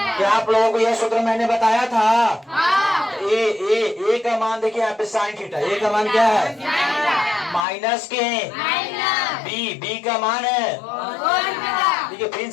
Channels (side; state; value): right; drops out; at 7.7 s